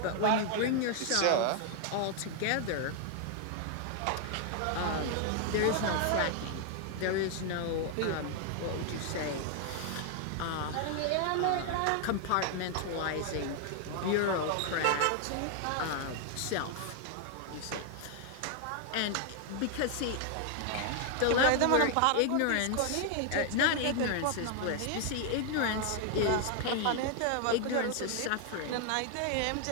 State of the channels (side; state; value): both; different; correlation 0.00